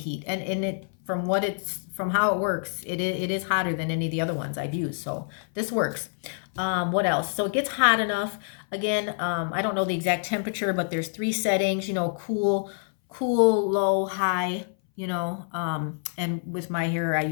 And it, from how it works, it is hotter than any of the other ones I've used. So this works. What else? So it gets hot enough. Again, I don't know the exact temperature, but there's 3 settings, you know, cool, low, high, you know, and with my hair, I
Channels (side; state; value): right; silent; 59 dB below the other